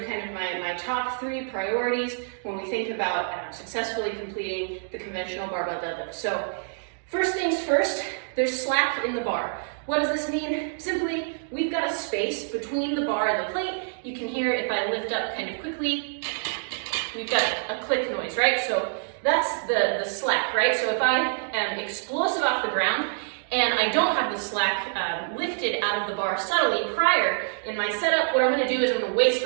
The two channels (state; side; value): silent; left; digital silence